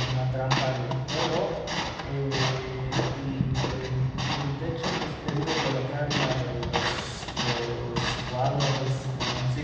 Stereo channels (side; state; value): both; identical; correlation 1.00